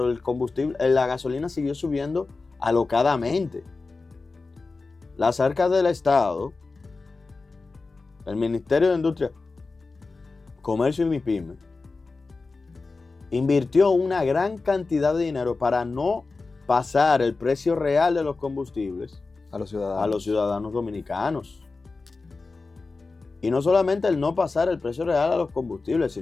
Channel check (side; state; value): right; quieter; 3.9 dB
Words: el combustible, la gasolina siguió subiendo alocadamente. Las arcas del Estado, el Ministerio de Industria, Comercio y MIPYMES, invirtió una gran cantidad de dinero para no pasar el precio real de los combustibles a los ciudadanos dominicanos. Y no solamente el no pasar el precio real a los combustibles,